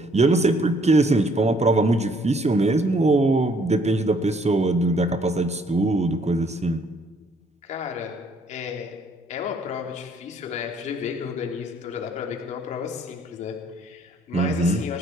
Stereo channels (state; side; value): normal; both; correlation 0.64